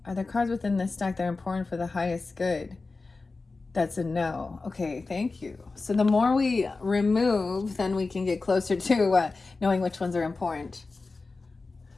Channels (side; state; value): right; quieter; 3.8 dB